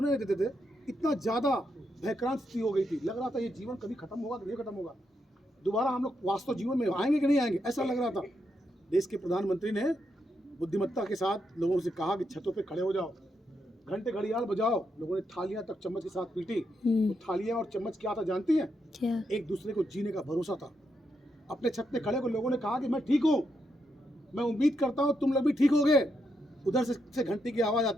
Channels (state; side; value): normal; both; correlation 0.81